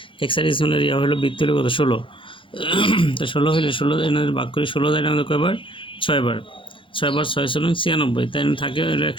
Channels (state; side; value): late; right; 0.25 ms